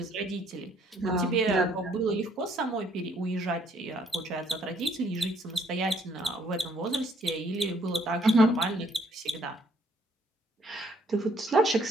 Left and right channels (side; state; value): both; normal; correlation 0.66